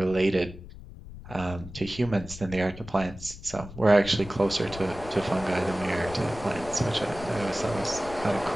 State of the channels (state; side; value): noise; left; rumble, 14 dB below the sound